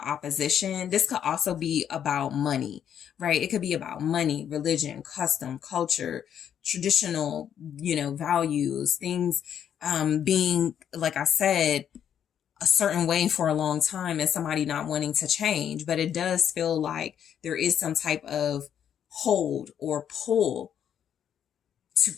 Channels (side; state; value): right; quieter; 9.1 dB